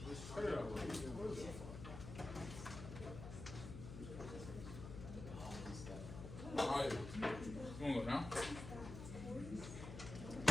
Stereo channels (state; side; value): noise; left; hum, 9 dB below the sound